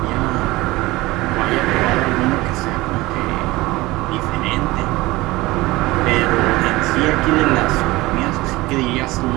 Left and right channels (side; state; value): left; quieter; 20.0 dB